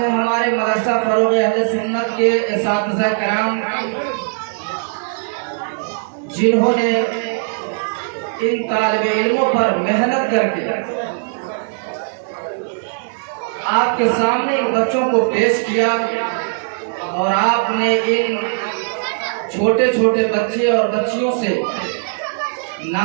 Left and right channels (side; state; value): left; silent; digital silence